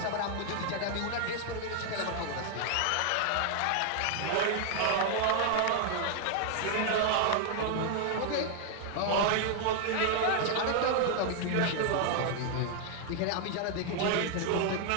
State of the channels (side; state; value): both; different; correlation 0.00